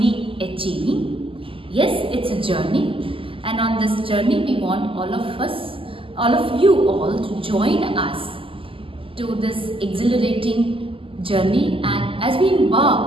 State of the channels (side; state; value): left; late; 0.26 ms